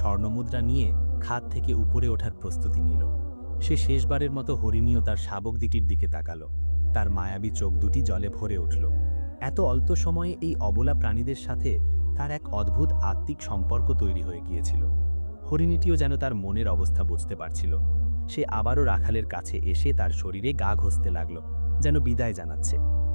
নিয়ে খাদ থেকে উপরে ওঠার প্রস্তুতি নিল। সে শেষবারের মতো হরিণীয় তার শাবক দুটির দিকে তাকালো। তার মায়াবী চোখ দুটি জলে ভরে উঠল। এত অল্প সময়ে এই অবলা প্রাণীদের সাথে তার এক অদ্ভুত আত্মিক সম্পর্ক তৈরি হয়ে গিয়েছিল। হরিণীটিও যেন তার মনের অবস্থা বুঝতে পারছিল। সে আবারও রাখালের কাছে এসে তার শরীরে গা ঘষতে লাগল, যেন বিদায় জানাচ্ছে।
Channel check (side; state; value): both; inverted; correlation -1.00